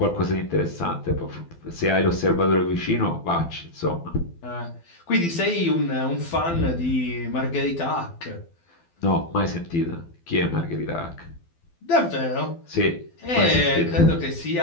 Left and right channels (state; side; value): late; right; 12 ms